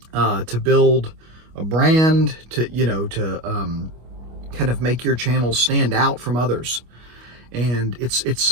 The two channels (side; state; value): left; late; 25 ms